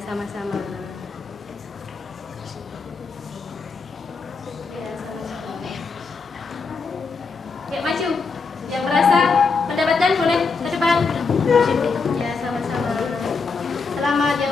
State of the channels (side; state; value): right; quieter; 4.7 dB